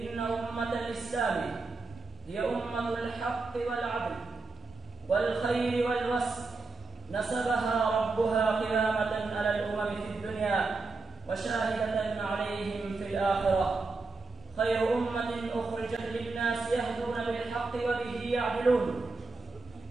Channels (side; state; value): left; quieter; 3.9 dB